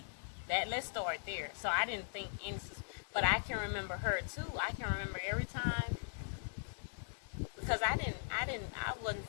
Let's start there. So I didn't think any, but I can remember her too. I can remember every time, because I wasn't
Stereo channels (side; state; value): right; silent; 51 dB below the other